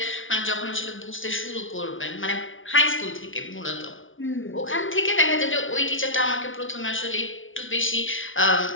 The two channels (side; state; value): right; late; 0.57 ms